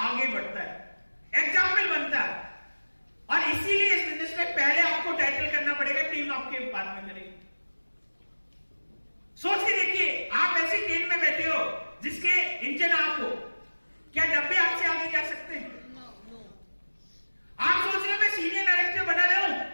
बढ़ता है, एग्जाम्पल बनता है। और इसीलिए इस बिजनेस में पहले आपको टाइटल करना पड़ेगा, टीम आपके बाद में करेगी। सोच के देखिए, आप ऐसी ट्रेन में बैठे हो जिसके इंजन आप हो, क्या डब्बे आपसे आगे जा सकते हैं? आप सोच रहे हो मैं सीनियर डायरेक्टर बना रहा हूं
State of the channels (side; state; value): both; inverted; correlation -1.00